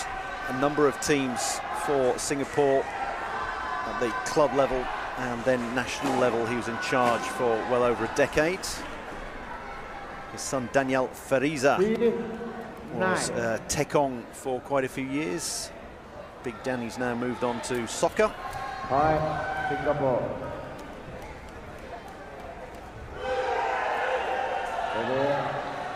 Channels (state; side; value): identical; both; correlation 1.00